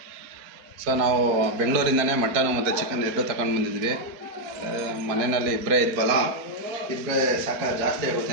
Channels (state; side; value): late; left; 4.6 ms